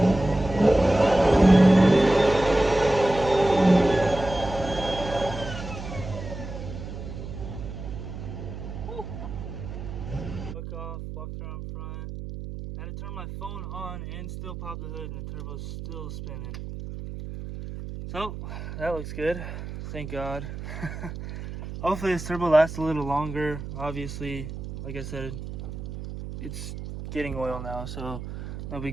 Look off, walked around front. I had to turn my phone on and still pop the hood, and the turbo's still spinning. So that looks good, thank God. Hopefully this turbo lasts a little longer. Obviously, like I said, it's getting oil now, so no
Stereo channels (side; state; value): right; noise; hum, 9 dB below the sound